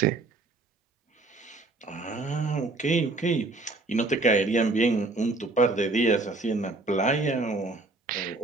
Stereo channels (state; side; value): quieter; left; 3.2 dB